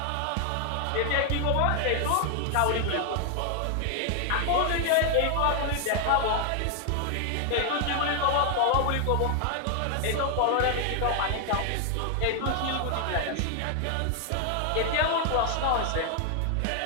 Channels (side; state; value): both; different; correlation 0.00